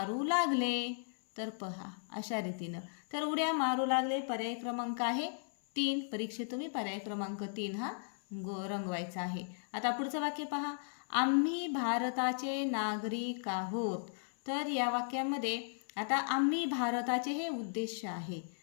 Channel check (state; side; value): silent; right; 54 dB below the other